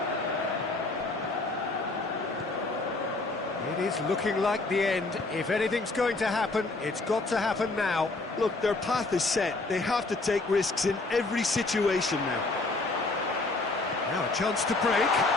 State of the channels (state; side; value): quieter; right; 3.3 dB